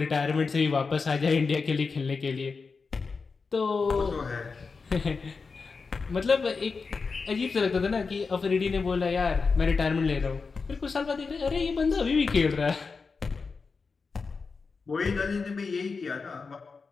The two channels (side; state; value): right; quieter; 4.7 dB